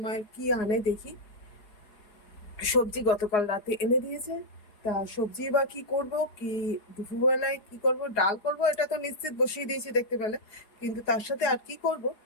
কি আনে দেখি। সবজি গতকাল রাতে এনে দিয়েছে। তা সবজি বা কি করব, কি দুপুরবেলায় কি করব, ডাল করব এটা তো নিশ্চিত বসিয়ে দিয়েছি দেখতে পেলে। কিন্তু তার সাথে আর কি করব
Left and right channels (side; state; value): right; late; 4.8 ms